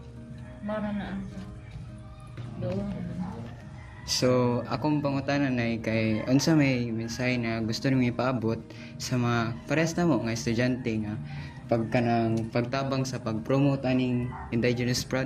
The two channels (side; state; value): both; identical; correlation 1.00